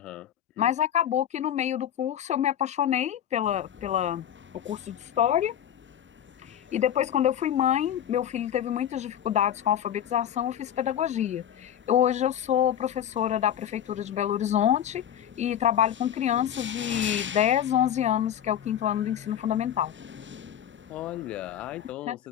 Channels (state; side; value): quieter; right; 10.2 dB